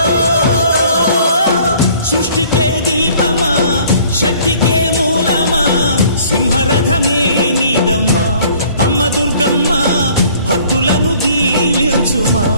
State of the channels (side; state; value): both; inverted; correlation -0.55